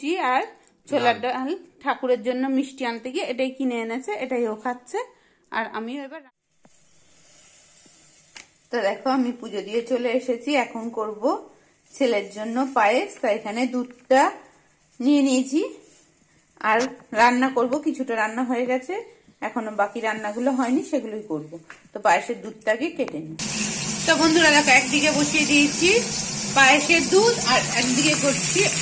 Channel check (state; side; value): identical; both; correlation 1.00